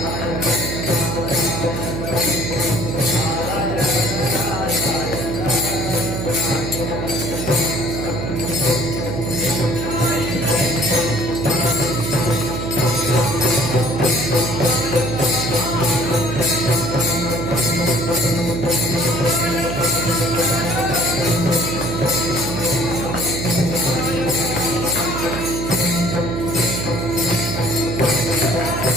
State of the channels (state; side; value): noise; right; hum, 4 dB below the sound